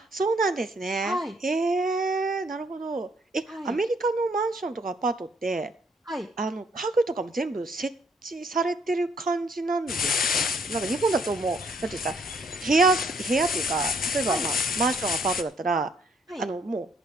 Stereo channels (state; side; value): normal; both; correlation 0.67